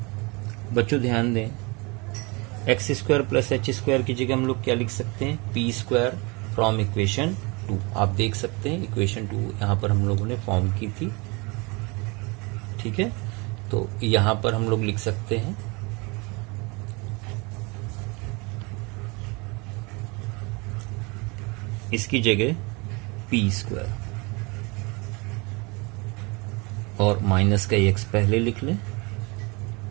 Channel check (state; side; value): quieter; left; 28.0 dB